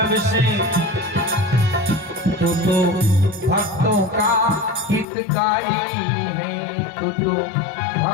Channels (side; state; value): right; drops out; at 5.1 s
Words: तू तो भक्तों का हितकारी है, तू तो